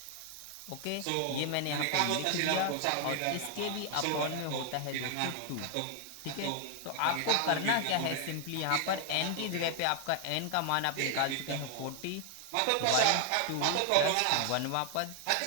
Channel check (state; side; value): different; both; correlation 0.00